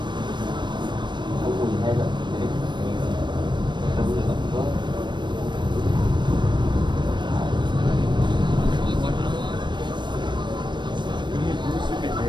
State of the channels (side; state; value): left; late; 0.22 ms